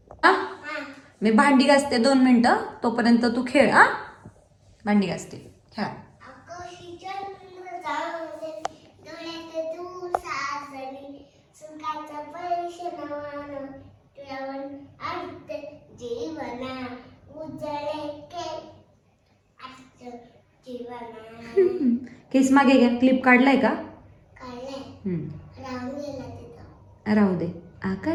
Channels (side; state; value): both; identical; correlation 1.00